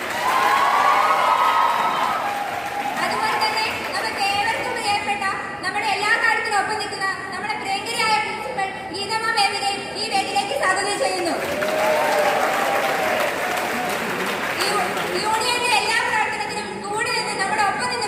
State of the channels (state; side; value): identical; both; correlation 1.00